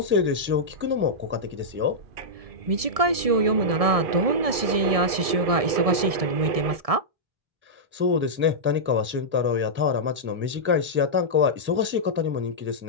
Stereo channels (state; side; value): late; left; 1.7 ms